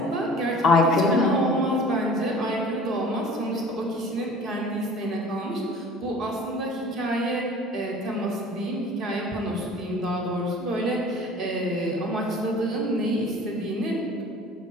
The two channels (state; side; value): normal; both; correlation 0.45